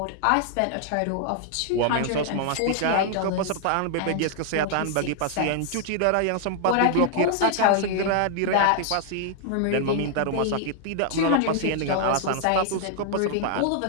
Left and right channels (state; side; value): different; both; correlation -0.01